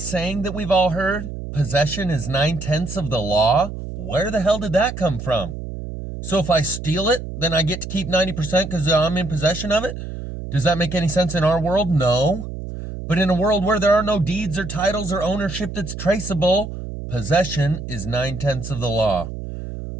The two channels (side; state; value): right; noise; hum, 8 dB below the sound